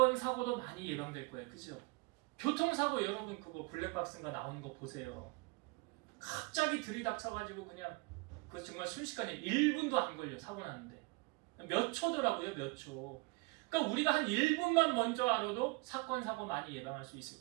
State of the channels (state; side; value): quieter; left; 26.6 dB